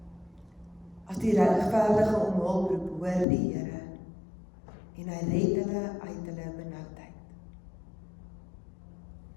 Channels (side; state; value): right; drops out; at 3.2 s